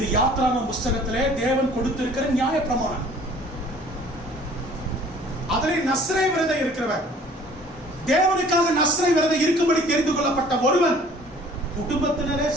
யாத்ராகம புஸ்தகத்திலே தேவன் கொடுத்திருக்கிற நியாய பிரமாணம். அதிலே நஸ்ரே விரதம் இருக்கிறவன், தேவனுக்காக நஸ்ரே விரதம் இருக்கும்படி தெரிந்து கொள்ளப்பட்ட ஒருவன் குடும்பத்தினரே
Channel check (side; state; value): both; normal; correlation 0.52